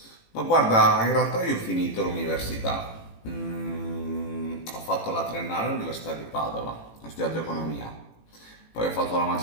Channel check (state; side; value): late; right; 18 ms